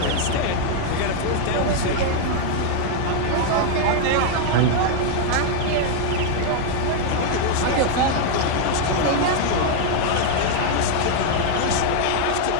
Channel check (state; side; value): different; both; correlation 0.00